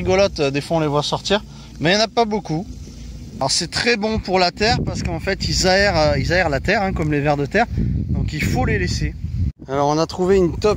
des fois on les voit sortir, mais il n'y en a pas beaucoup. Alors c'est très bon pour la terre parce qu'en fait ils aèrent la terre, hein, comme les vers de terre, donc il faut les laisser. Alors on a trouvé une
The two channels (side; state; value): both; identical; correlation 1.00